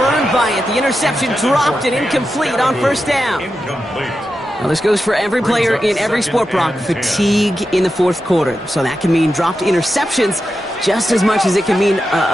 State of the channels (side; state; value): both; normal; correlation 0.89